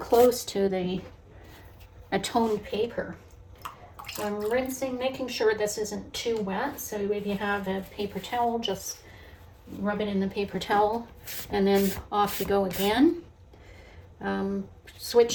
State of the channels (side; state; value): both; identical; correlation 1.00